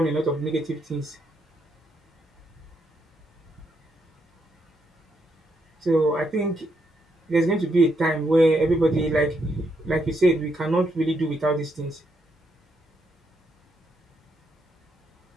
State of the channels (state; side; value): normal; both; correlation 0.78